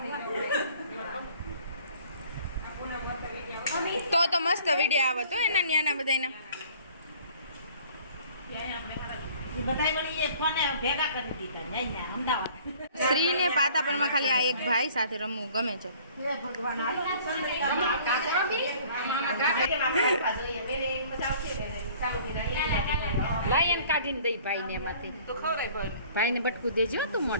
તો મસ્ત વિડીયો આવે તો એના ન્યાના બધાના. શ્રીને પાતાપરમાં ખાલી આ એક ભાઈ સાથે રમવું ગમે છે. લાયન કાઢીને દઈ ભાઈને એમાંથી ભાઈને બટકું દેજો તું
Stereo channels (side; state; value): both; inverted; correlation -0.53